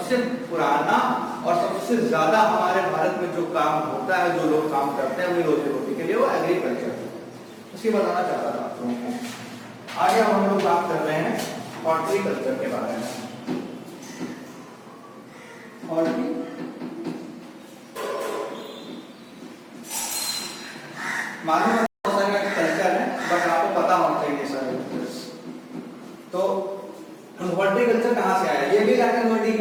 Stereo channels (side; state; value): both; identical; correlation 1.00